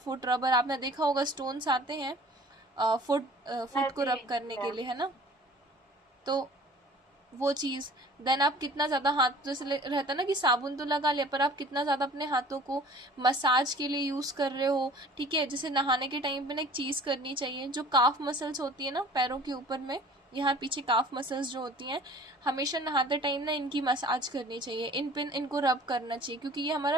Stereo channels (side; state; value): both; normal; correlation 0.47